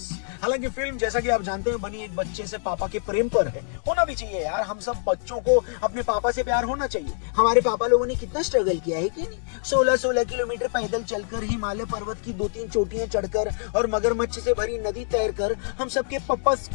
हालांकि फिल्म जैसा कि आप जानते हैं बनी एक बच्चे से पापा के प्रेम पर है, होना भी चाहिए यार, हम सब बच्चों को अपने पापा से प्यार होना चाहिए। हमारे पापा लोगों ने कितना स्ट्रगल किया है कि नहीं, 16-16 किलोमीटर पैदल चलकर, हिमालय पर्वत की 2-3 चोटियां चढ़कर और मगरमच्छ से भरी नदी तैरकर हम सबके पापा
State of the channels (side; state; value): right; silent; digital silence